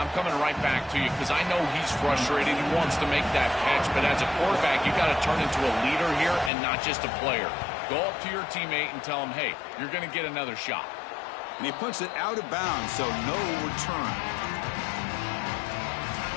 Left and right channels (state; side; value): drops out; right; at 6.5 s